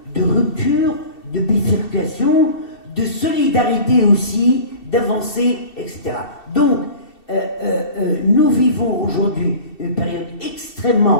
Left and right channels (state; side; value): late; right; 2.7 ms